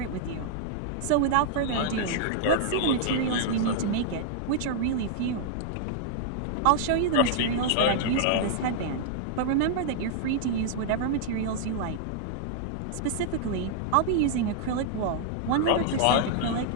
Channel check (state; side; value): different; both; correlation -0.01